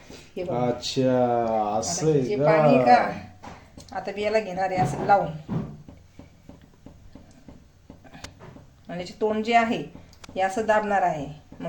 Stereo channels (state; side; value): identical; both; correlation 1.00